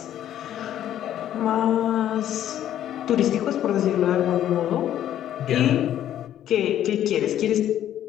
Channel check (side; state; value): right; quieter; 11.4 dB